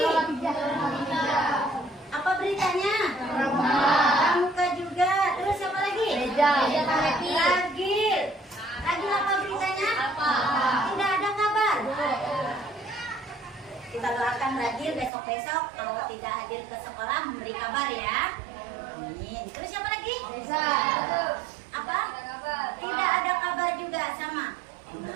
Apa beritanya? Pramuka juga. Terus siapa lagi? Ragil. Ragil apa beritanya? Tidak ada kabar. Kita doakan Ragil besok-besok kalau tidak hadir ke sekolah memberi kabar ya. Amin. Terus siapa lagi? Apa? Tidak ada kabar juga sama.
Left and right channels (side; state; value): left; drops out; at 15.1 s